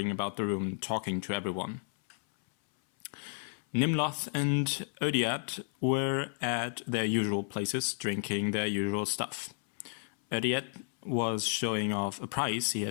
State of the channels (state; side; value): silent; right; 56 dB below the other